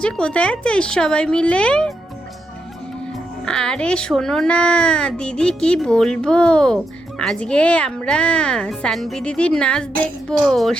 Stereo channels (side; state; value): both; normal; correlation 0.83